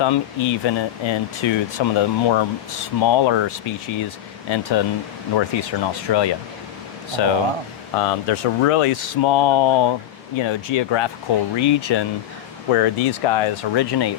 even into some of the more smaller species into northeastern Australia. So there's a really small, geographical region where these guys originate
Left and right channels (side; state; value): right; quieter; 11.8 dB